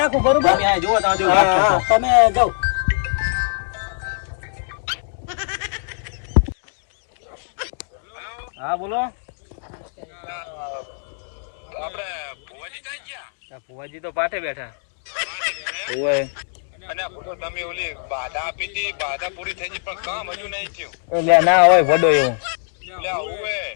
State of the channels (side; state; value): right; silent; digital silence